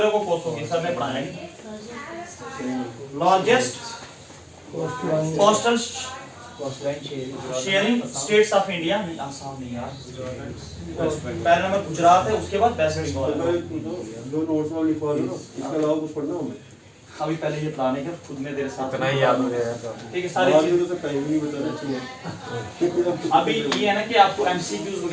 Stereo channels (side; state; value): both; identical; correlation 1.00